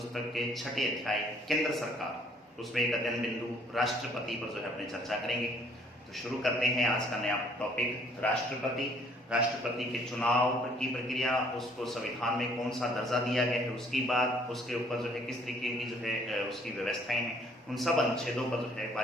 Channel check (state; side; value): normal; both; correlation 0.61